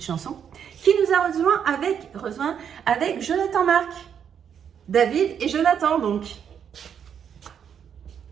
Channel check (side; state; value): left; quieter; 8.1 dB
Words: chanson. Qui nous a rejoint avec Jonathan Marc. David et Jonathan, donc.